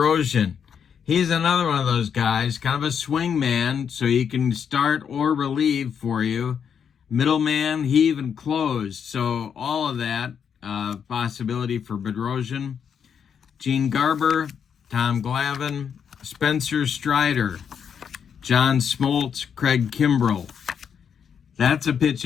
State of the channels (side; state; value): right; quieter; 7.5 dB